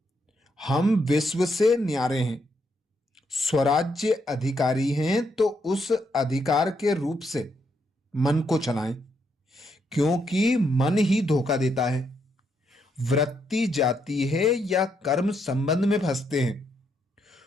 हम विश्व से न्यारे हैं, स्वराज्य अधिकारी हैं, तो उस अधिकार के रूप से मन को चलाएं, क्योंकि मन ही धोखा देता है। वृत्ति जाती है या कर्म संबंध में फंसते हैं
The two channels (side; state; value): both; normal; correlation 0.77